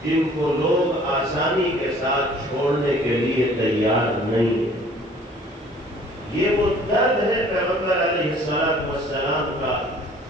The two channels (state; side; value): normal; both; correlation 0.53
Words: جن کو لوگ آسانی کے ساتھ چھوڑنے کے لیے تیار نہیں ہیں۔ یہ وہ درد ہے پیغمبر علیہ السلام کا،